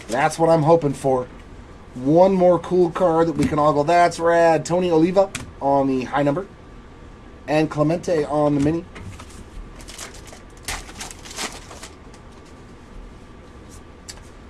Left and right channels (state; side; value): identical; both; correlation 1.00